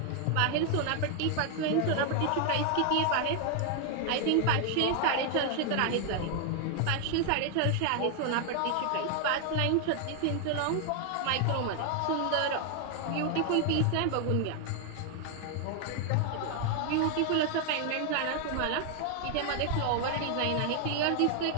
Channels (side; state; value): both; different; correlation 0.00